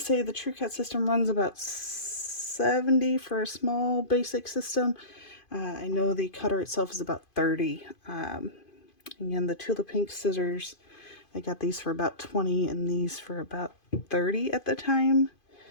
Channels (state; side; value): late; right; 2.5 ms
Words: the Trucut system runs about $70 for a small basic system. I know the cutter itself is about $30. Again, the Tula Pink scissors, I got these for about $20 and these for about $30 at the time.